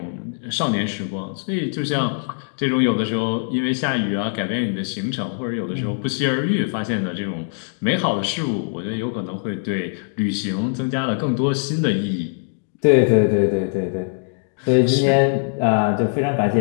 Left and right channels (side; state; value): right; silent; digital silence